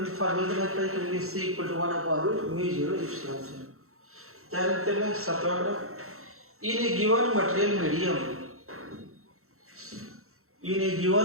formula में आता है कि c equal to 1 upon root mu 0 epsilon 0. क्या लिखते हैं सातवां graph in a given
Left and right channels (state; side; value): late; left; 0.63 ms